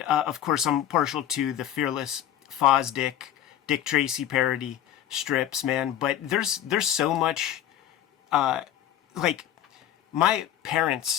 of course, I'm partial to the Fearless Fosdick, Dick Tracy parody strips, man. But there's so much. Like, my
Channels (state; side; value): quieter; right; 11.0 dB